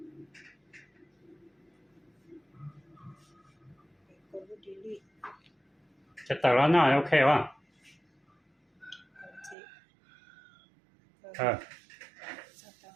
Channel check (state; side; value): drops out; left; at 9.6 s